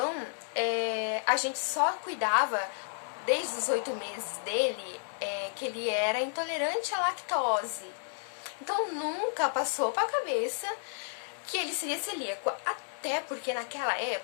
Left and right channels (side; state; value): right; silent; digital silence